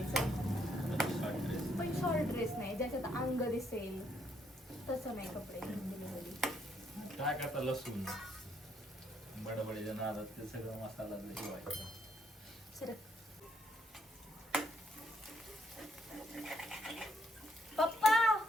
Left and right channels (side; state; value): both; normal; correlation 0.74